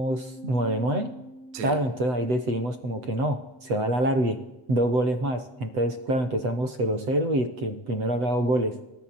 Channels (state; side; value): late; left; 8.0 ms